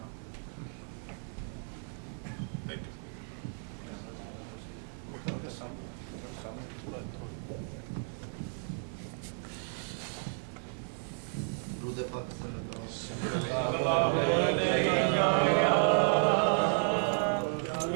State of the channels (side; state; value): left; silent; 56 dB below the other